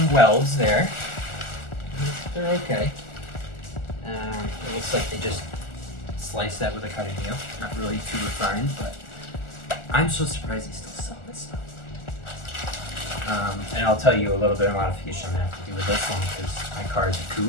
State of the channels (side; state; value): right; late; 1.4 ms